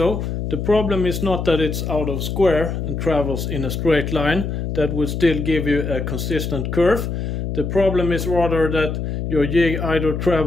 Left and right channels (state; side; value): noise; left; hum, 3 dB below the sound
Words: the problem is not that it's out of square and travels in a straight line. That would still give you a consistent curve. The problem is rather that your jig either